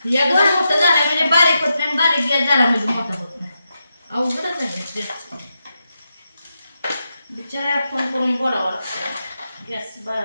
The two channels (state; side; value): inverted; both; correlation -0.87